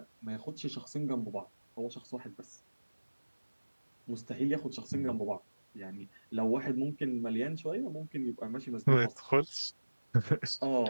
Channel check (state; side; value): inverted; both; correlation -1.00